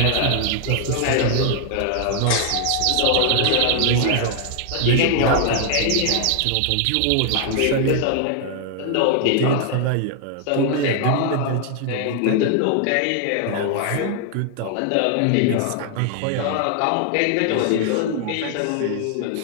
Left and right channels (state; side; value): different; both; correlation 0.00